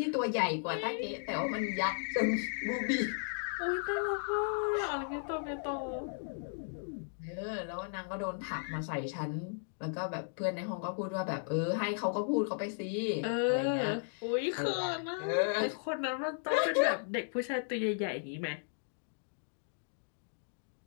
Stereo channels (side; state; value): right; silent; digital silence